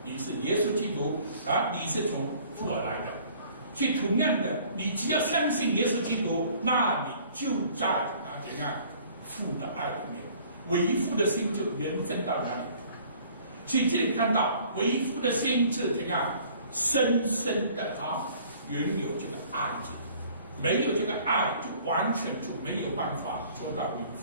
你是耶稣基督啊，你是从父而来的。所以同样的，你只要相信耶稣基督，那你就在怎样父的爱里面，为父的心就延伸到哪里。所以这里看到为父的心是怎样深深的拥有这个爱字，没有这个爱，就完全就没有办法做到为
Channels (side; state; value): both; inverted; correlation -0.54